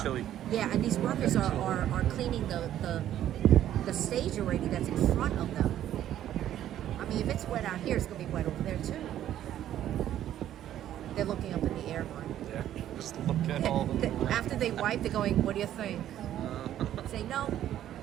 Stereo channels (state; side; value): quieter; left; 11.8 dB